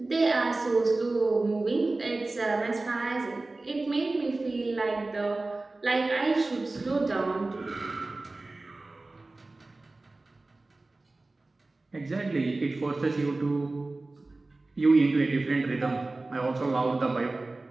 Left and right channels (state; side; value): quieter; left; 3.1 dB